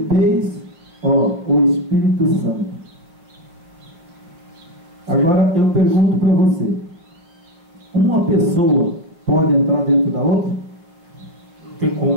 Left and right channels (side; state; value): left; late; 5.8 ms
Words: ó, o Espírito Santo. Agora eu pergunto para você: uma pessoa pode entrar dentro da outra? Não tem